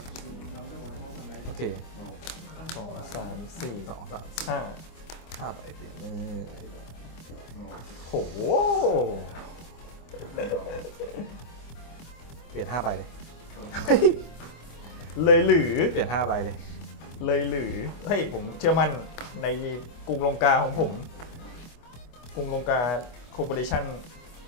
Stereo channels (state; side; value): late; right; 25 ms